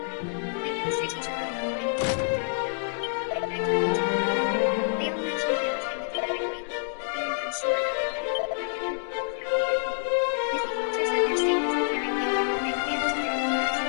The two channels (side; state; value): right; silent; digital silence